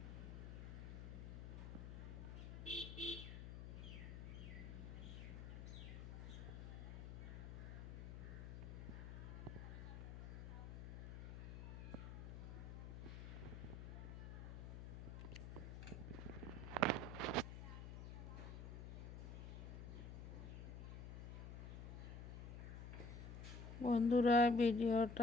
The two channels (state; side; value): noise; left; hum, 8 dB below the sound